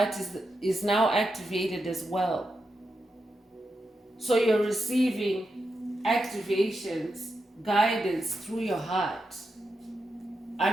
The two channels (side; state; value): both; normal; correlation 0.87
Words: is now activated as well. So you're receiving activations, guidance through your heart.